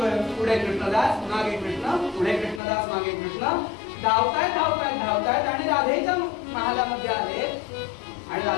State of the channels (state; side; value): drops out; right; at 2.6 s